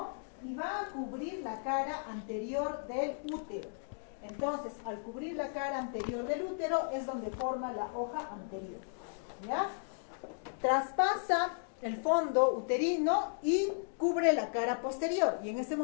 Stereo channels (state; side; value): silent; right; digital silence